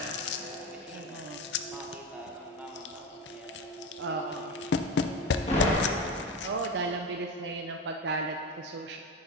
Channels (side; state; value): both; normal; correlation 0.22